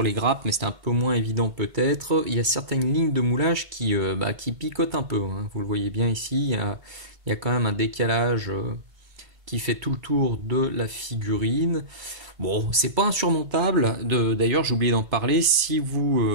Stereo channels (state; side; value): late; left; 2.1 ms